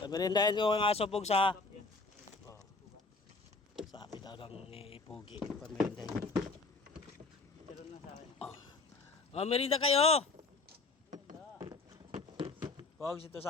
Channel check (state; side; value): quieter; right; 3.7 dB